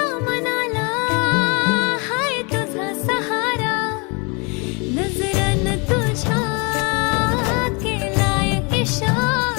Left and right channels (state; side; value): quieter; right; 31.3 dB